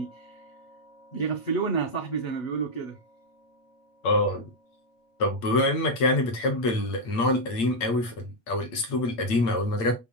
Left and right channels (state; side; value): late; right; 8.7 ms